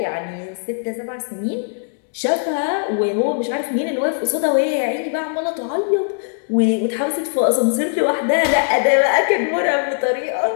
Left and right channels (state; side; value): silent; right; digital silence